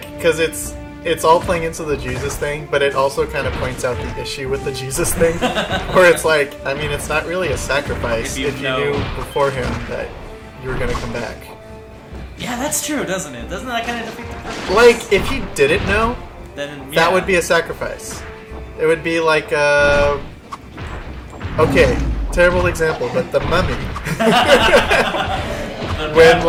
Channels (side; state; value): both; identical; correlation 1.00